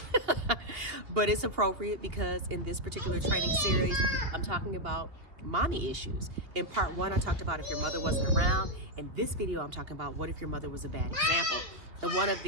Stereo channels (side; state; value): left; late; 2.7 ms